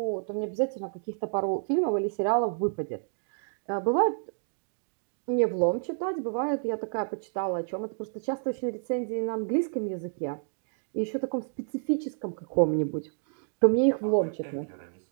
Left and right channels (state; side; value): silent; left; digital silence